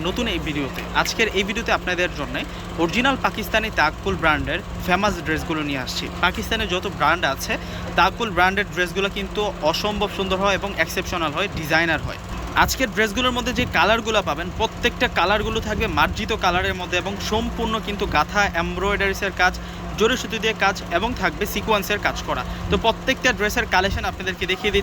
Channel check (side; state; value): both; identical; correlation 1.00